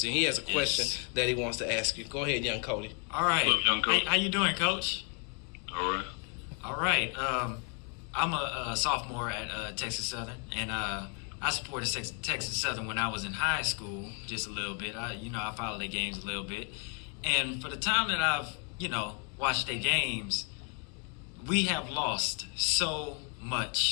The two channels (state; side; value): quieter; right; 38.8 dB